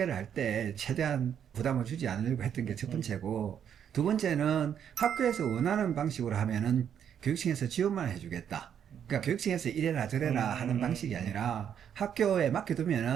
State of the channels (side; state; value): left; quieter; 8.7 dB